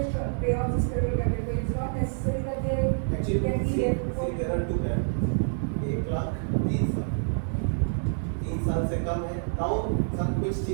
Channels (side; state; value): left; silent; digital silence